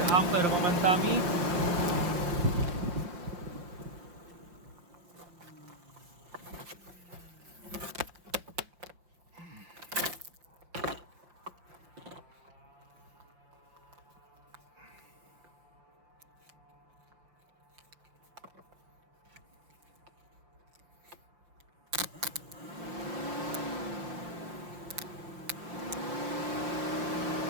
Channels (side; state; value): left; late; 5.9 ms